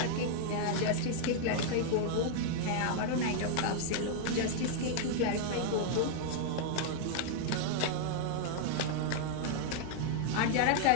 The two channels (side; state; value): both; different; correlation 0.00